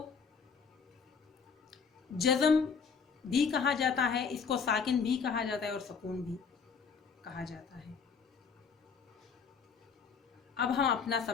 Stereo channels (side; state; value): right; quieter; 5.9 dB